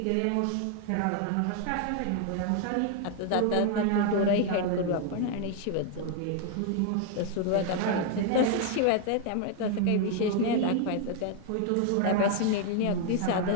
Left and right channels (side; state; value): both; different; correlation 0.00